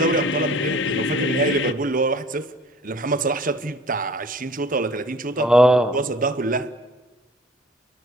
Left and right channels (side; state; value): both; normal; correlation 0.49